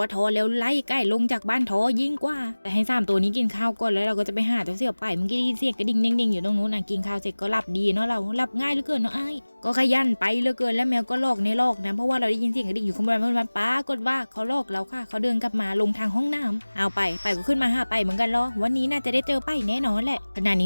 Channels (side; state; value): both; inverted; correlation -1.00